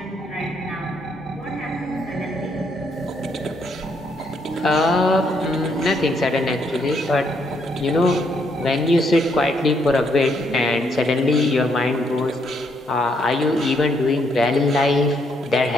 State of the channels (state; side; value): normal; both; correlation 0.73